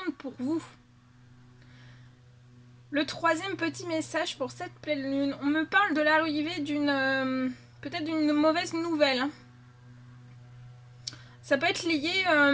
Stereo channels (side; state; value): both; identical; correlation 1.00